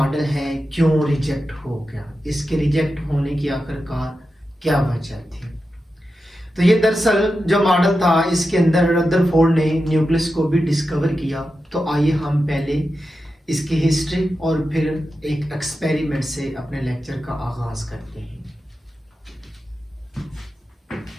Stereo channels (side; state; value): both; normal; correlation 0.90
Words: है क्यों रिजेक्ट हो गया, इसके रिजेक्ट होने की आखिरकार क्या वजह थी। तो ये दरअसल जो मॉडल था इसके अंदर रदरफोर्ड ने न्यूक्लियस को भी डिस्कवर किया। तो आइए हम पहले इसकी हिस्ट्री और फिर एक एक्सपेरिमेंट से अपने लेक्चर का आगाज करते हैं।